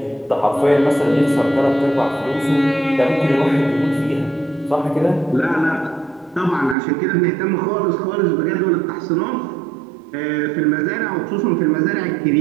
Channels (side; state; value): left; drops out; at 6.8 s